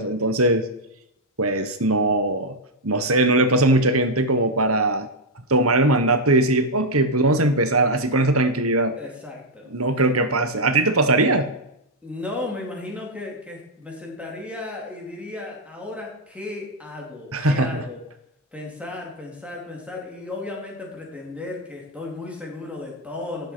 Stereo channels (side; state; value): both; normal; correlation -0.01